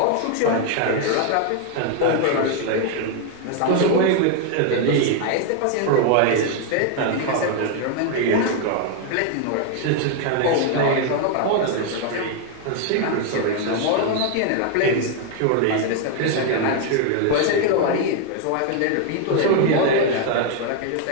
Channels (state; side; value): different; both; correlation 0.00